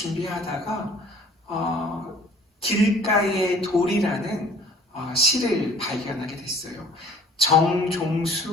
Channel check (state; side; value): normal; both; correlation 0.52